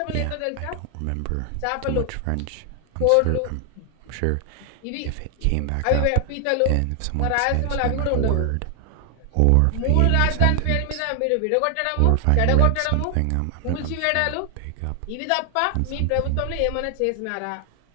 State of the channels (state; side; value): different; both; correlation 0.00